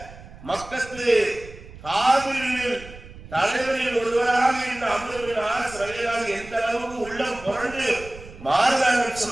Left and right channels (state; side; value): noise; right; rumble, 17 dB below the sound